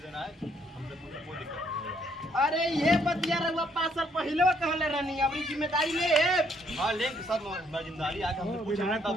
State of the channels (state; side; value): normal; both; correlation 0.69